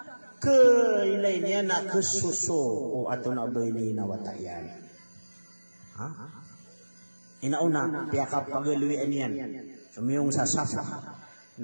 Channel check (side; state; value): both; inverted; correlation -1.00